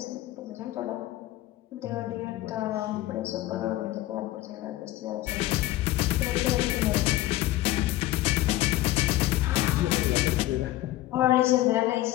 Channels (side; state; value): right; quieter; 15.9 dB